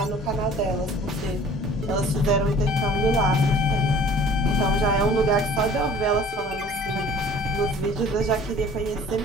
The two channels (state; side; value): normal; both; correlation 0.49